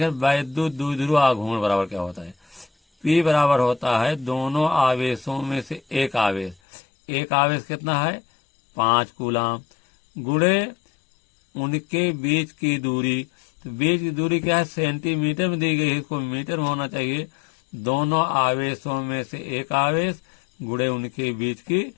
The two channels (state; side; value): drops out; right; at 6.6 s